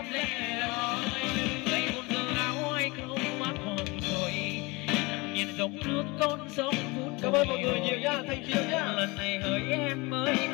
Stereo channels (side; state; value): right; quieter; 25.2 dB